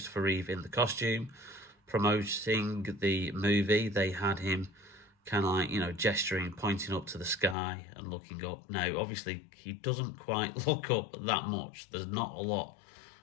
Reeve in the costume, promoting the movie. They had him kind of like, gesturing, pointing up to the sky and looking up. Now, obviously, he doesn't quite look up that much. There's not a lot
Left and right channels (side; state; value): right; drops out; at 7.6 s